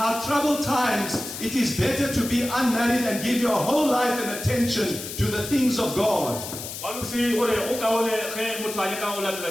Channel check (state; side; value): noise; left; hiss, 9 dB below the sound